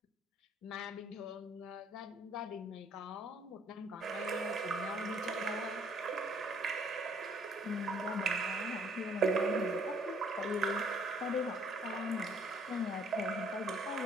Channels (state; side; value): normal; both; correlation 0.61